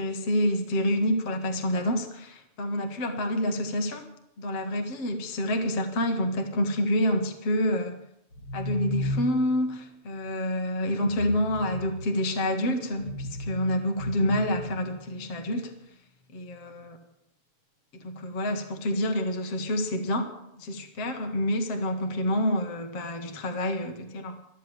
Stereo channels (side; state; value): right; late; 7.5 ms